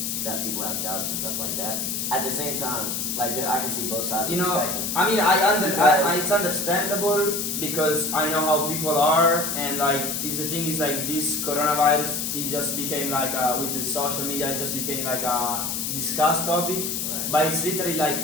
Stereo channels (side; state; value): left; noise; hiss, 2 dB below the sound